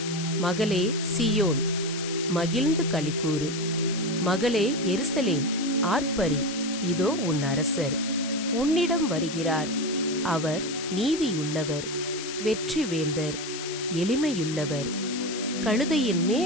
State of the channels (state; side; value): noise; left; hiss, 8 dB below the sound